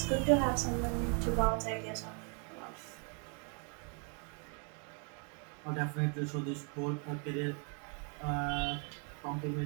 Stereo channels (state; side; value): quieter; left; 39.1 dB